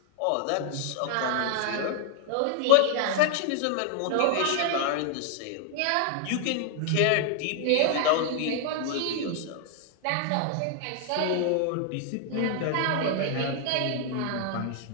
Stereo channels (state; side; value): different; both; correlation 0.00